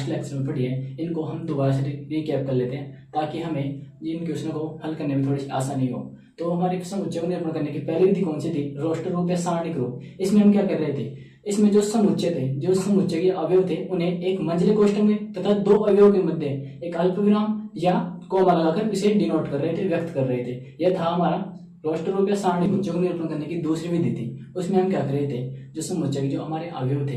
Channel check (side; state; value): both; identical; correlation 1.00